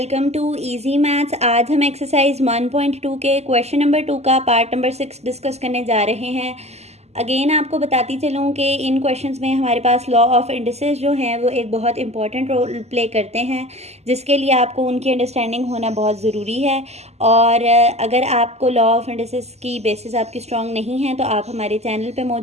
to Easy Maths. आज हम exercise 1.2 के क्वेश्चन नंबर 2 का पार्ट नंबर 6 डिस्कस करने जा रहे हैं। अगेन आपको बताती चलूँ कि इन क्वेश्चंस में हमारे पास लॉ ऑफ इंडिसेस जो हैं वो एक बहुत इंपॉर्टेंट रोल प्ले करते हैं, जिसके लिए आपको उनकी अंडरस्टैंडिंग होना बहुत ज़रूरी है। और अगर आपको लॉ ऑफ इंडिसेस की बेसिस आपकी स्ट्रॉन्ग नहीं है तो आप हमारे चैनल पे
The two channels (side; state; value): left; late; 0.31 ms